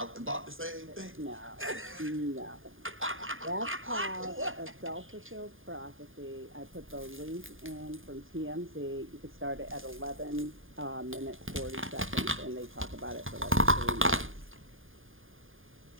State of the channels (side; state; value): left; late; 0.59 ms